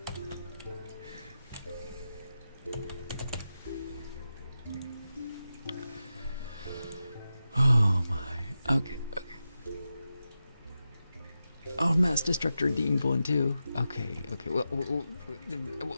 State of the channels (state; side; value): inverted; both; correlation -0.91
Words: Oh my. Okay. Oh, Mass Destructor Deemed one too. Okay. Well,